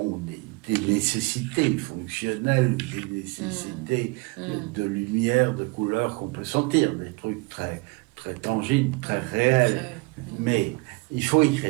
des nécessités fonctionnelles, des nécessités de lumière, de couleur qu'on peut sentir, des trucs très, très tangibles, très réels. Mais il faut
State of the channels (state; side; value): quieter; left; 27.2 dB